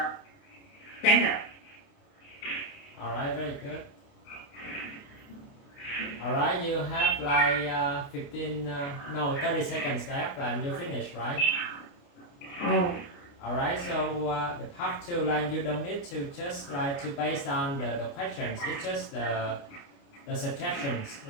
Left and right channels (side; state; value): right; late; 29 ms